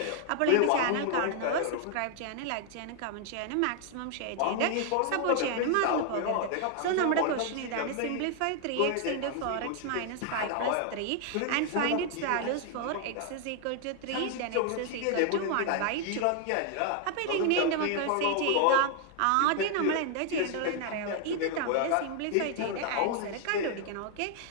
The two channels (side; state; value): both; different; correlation 0.00